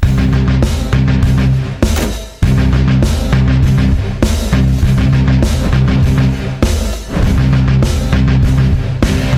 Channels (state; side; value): identical; both; correlation 1.00